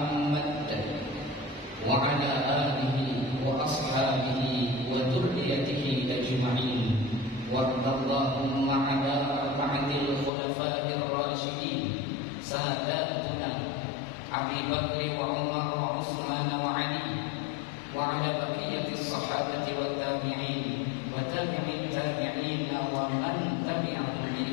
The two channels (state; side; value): drops out; right; at 10.3 s